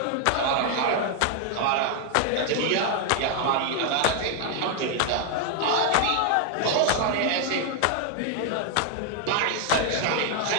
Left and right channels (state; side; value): different; both; correlation 0.00